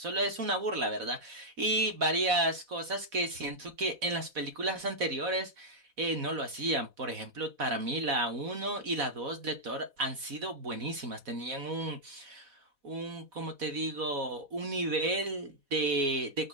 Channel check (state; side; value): late; left; 4.1 ms